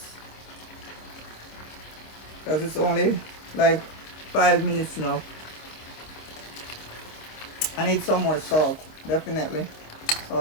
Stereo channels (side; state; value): right; late; 26 ms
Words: because it's only like 5 minutes now. I need some more salt, definitely